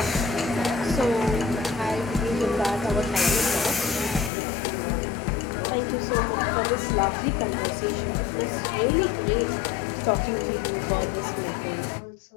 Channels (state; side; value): drops out; right; at 4.3 s